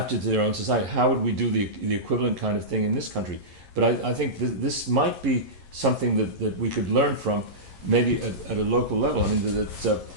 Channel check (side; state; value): left; late; 11 ms